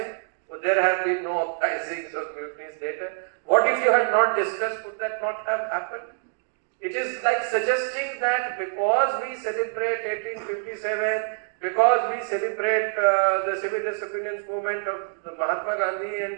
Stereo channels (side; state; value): left; silent; 61 dB below the other